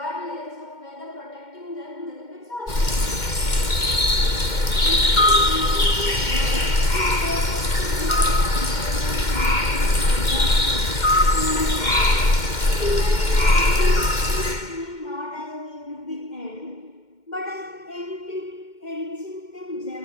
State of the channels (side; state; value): right; late; 2.1 ms